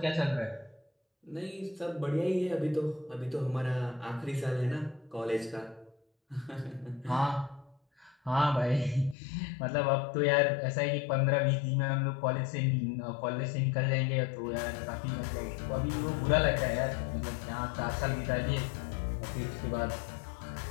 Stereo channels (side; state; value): right; drops out; at 9.2 s